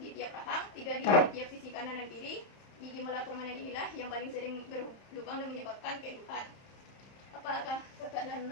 di tiap rahang, 3 di tiap sisi kanan dan kiri. Gigi molar permanen inilah yang paling sering berlubang dan menyebabkan keluhan. Apakah kakak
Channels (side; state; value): right; late; 31 ms